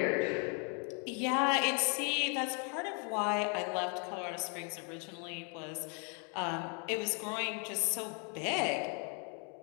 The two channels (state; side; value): quieter; right; 38.0 dB